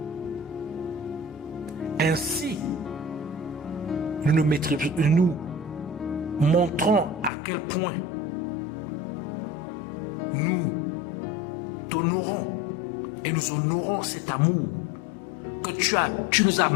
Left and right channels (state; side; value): drops out; right; at 7.3 s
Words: Ainsi, nous montrons à quel point nous t'honorons et nous honorons cet amour que tu nous as